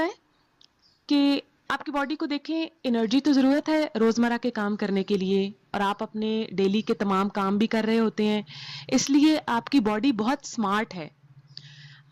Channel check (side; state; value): both; identical; correlation 1.00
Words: है कि आपकी बॉडी को देखें, एनर्जी तो ज़रूरत है रोज़मर्रा के काम करने के लिए और आप अपने डेली के तमाम काम भी कर रहे होते हैं, इसलिए आपकी बॉडी बहुत स्मार्ट है।